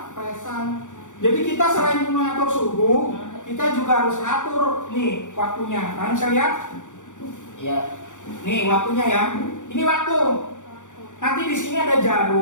Jadi kita selain mengatur suhu, kita juga harus atur nih waktunya. Nah, bisa lihat? Ya. Nih waktunya ya. Ini waktu. Nanti di sini ada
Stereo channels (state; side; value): late; right; 0.86 ms